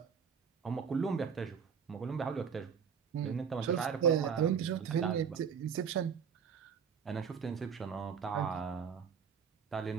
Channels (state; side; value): quieter; left; 7.0 dB